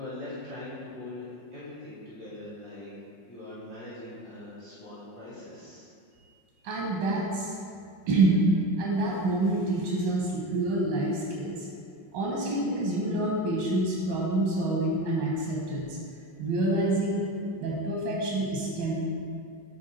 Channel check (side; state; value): left; late; 5.5 ms